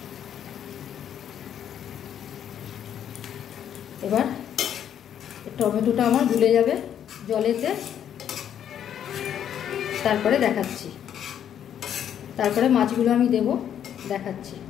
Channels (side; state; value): right; quieter; 9.5 dB